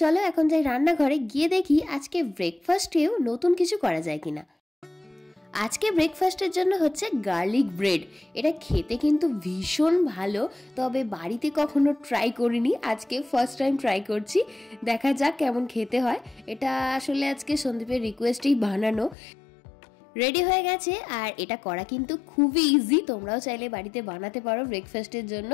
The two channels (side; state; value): right; drops out; at 19.2 s